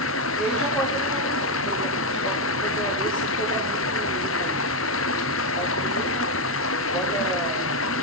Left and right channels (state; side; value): normal; both; correlation 0.04